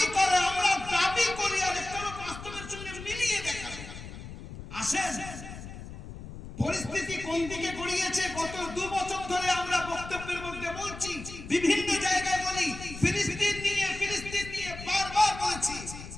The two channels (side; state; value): left; noise; rumble, 12 dB below the sound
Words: করে, আমরা দাবি করি, আর একটা হলো বাস্তবের সঙ্গে মিলিয়ে দেখা। আসেন পরিস্থিতি কোন দিকে গড়িয়েছে গত 2 বছর ধরে আমরা বক্তব্যের মধ্যে বলছি, বিভিন্ন জায়গায় বলি, ফিলিস্তিন নিয়ে বারবার বলেছি।